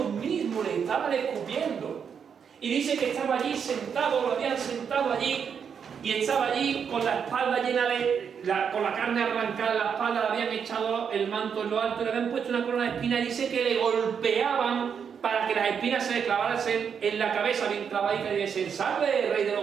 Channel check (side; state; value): left; quieter; 7.1 dB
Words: mismo le estaban escupiendo. Y dice que estaba allí sentado, lo habían sentado allí y estaba allí con la espalda llena con la carne arrancada en la espalda, le habían echado el manto en lo alto, le habían puesto una corona de espinas y dice que le golpeaban para que las espinas se le clavaran en la cabeza bien clavadita y le dicen, salve, rey de